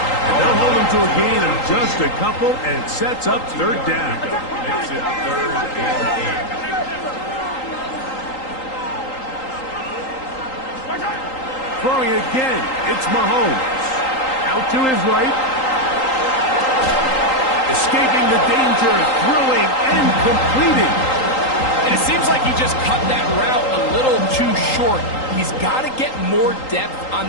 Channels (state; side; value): late; right; 3.8 ms